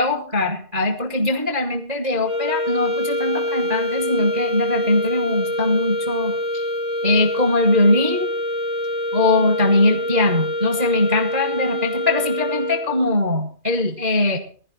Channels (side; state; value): left; late; 2.4 ms